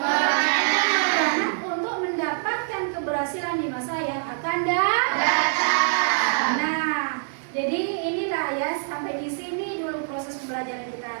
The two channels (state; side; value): silent; left; 62 dB below the other